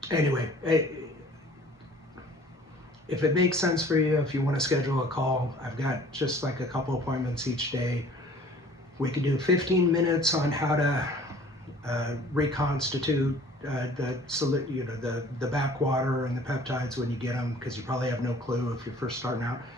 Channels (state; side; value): normal; both; correlation 0.51